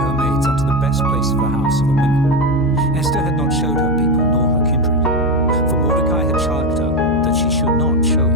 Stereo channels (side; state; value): left; noise; hum, 9 dB below the sound